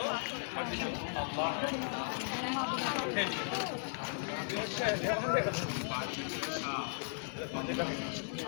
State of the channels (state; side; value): silent; right; digital silence